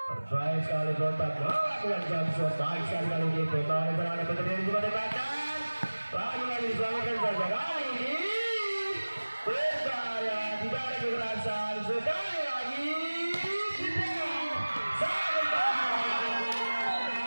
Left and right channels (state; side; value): inverted; both; correlation -1.00